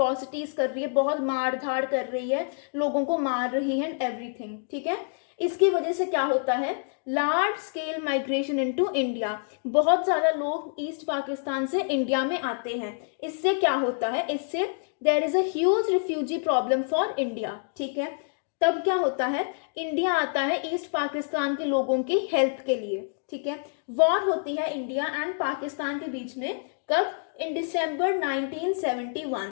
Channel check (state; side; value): silent; right; digital silence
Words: कर रही है, बहुत मार धाड़ कर रही है, लोगों को मार रही है एंड एवरीथिंग. ठीक है, इसकी वजह से क्या होता है, large scale migration into India, बहुत ज़्यादा लोग ईस्ट पाकिस्तान से इंडिया में आते हैं. इससे क्या होता है, इससे there is a huge refugee problem for India. ठीक है, तब क्या होता है, इंडिया आता है ईस्ट पाकिस्तान के लोगों की हेल्प के लिए. ठीक है, वॉर होती है इंडिया एंड पाकिस्तान के बीच में. कब, इन दिसंबर